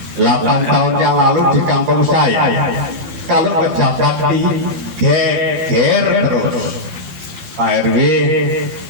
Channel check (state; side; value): late; left; 12 ms